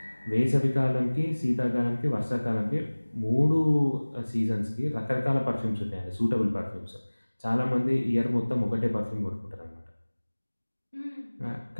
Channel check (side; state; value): both; inverted; correlation -1.00